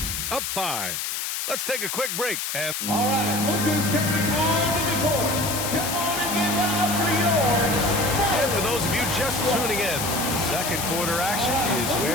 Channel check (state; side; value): noise; left; hiss, 3 dB below the sound